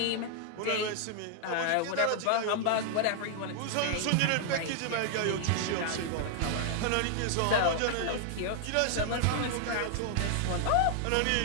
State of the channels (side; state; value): both; different; correlation 0.00